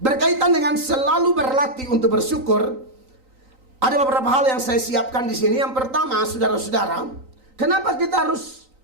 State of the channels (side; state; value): left; late; 3.9 ms